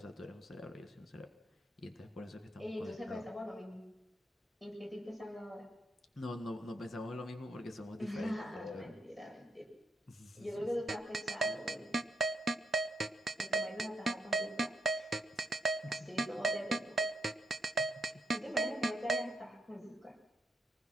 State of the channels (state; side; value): normal; both; correlation 0.79